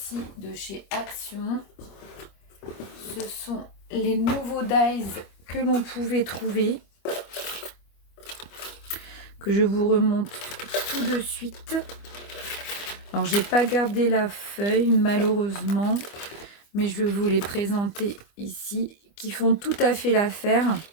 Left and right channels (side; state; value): right; late; 25 ms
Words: de chez Action. Ce sont les nouveaux dies que l'on pouvait trouver, que je vous remonte tout de suite. Alors, j'ai pas gardé la feuille, malheureusement, mais je vais vous les présenter ici, qui font tout à fait l'affaire